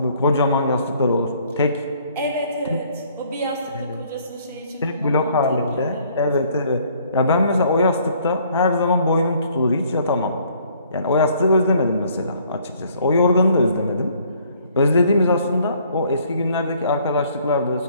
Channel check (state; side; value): inverted; both; correlation -0.62